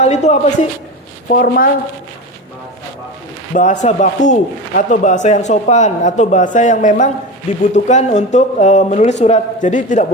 itu apa sih? Formal bahasa baku atau bahasa yang sopan atau bahasa yang memang dibutuhkan untuk menulis surat. Jadi tidak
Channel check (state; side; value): normal; both; correlation 0.25